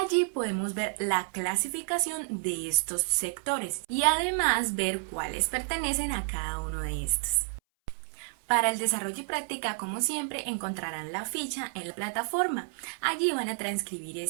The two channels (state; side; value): silent; left; 58 dB below the other